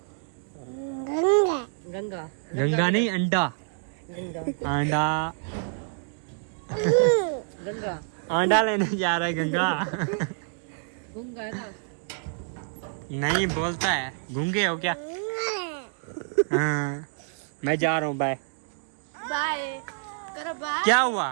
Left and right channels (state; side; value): silent; left; digital silence